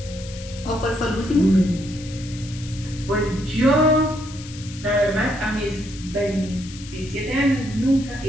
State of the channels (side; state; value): left; noise; hiss, 16 dB below the sound